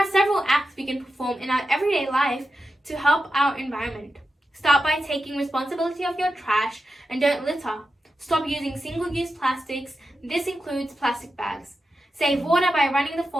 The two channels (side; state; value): both; normal; correlation 0.90